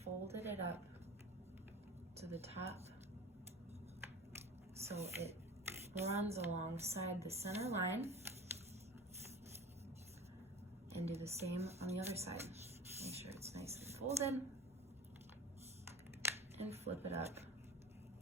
folded it up to the top so it runs alongside the center line, and do the same on the other side. Make sure it's nice and folded, and flip it up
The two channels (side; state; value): both; normal; correlation 0.35